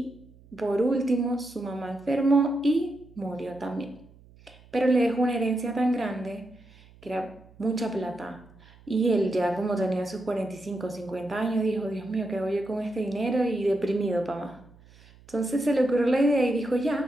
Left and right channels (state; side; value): noise; right; hum, 25 dB below the sound